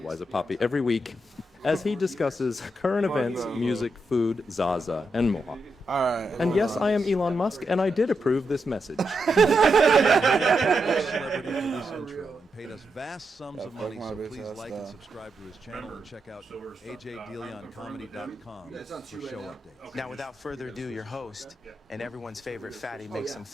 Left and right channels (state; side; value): normal; both; correlation 0.84